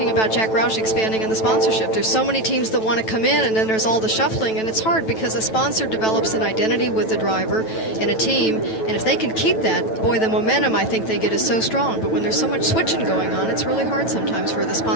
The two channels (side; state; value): right; late; 9.1 ms